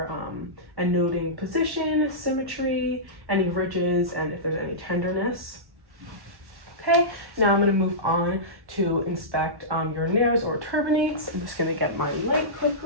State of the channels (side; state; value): left; late; 1.1 ms